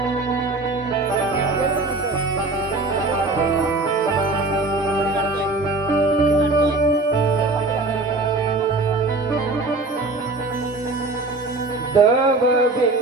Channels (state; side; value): quieter; left; 3.2 dB